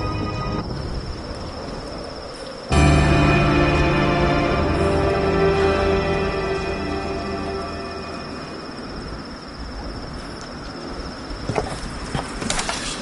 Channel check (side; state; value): both; identical; correlation 1.00